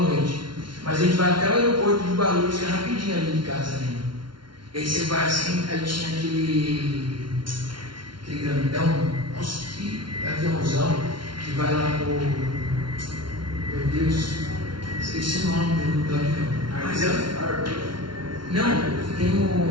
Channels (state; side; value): late; left; 0.72 ms